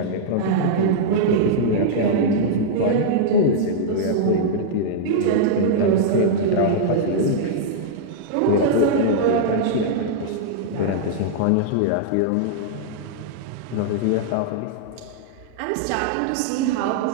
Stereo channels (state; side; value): different; both; correlation -0.02